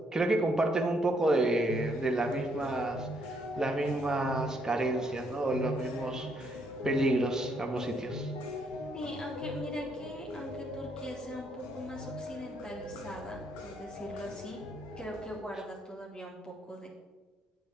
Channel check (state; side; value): normal; both; correlation 0.72